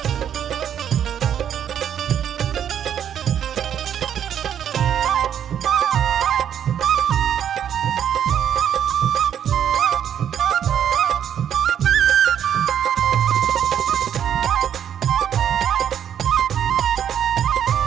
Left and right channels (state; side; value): quieter; left; 9.3 dB